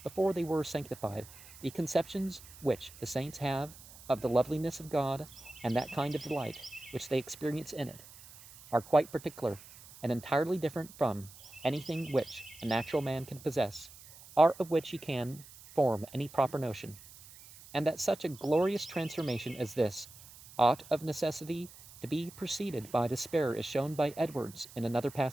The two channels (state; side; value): noise; right; hiss, 19 dB below the sound